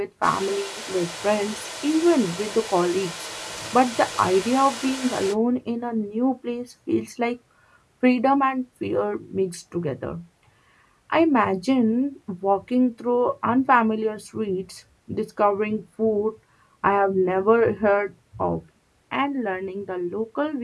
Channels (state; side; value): identical; both; correlation 1.00